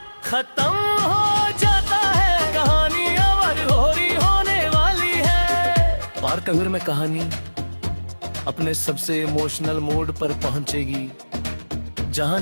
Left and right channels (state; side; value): inverted; both; correlation -1.00